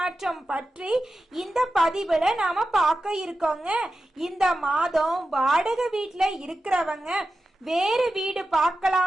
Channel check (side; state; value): both; normal; correlation 0.92